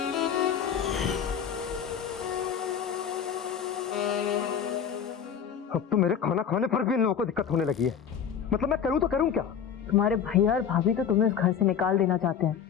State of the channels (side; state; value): right; quieter; 7.9 dB